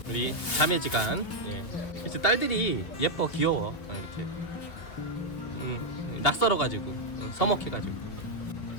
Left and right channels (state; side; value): late; right; 2.4 ms